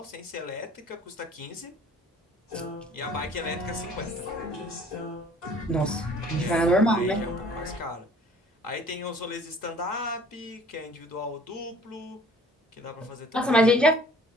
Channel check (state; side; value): normal; both; correlation 0.52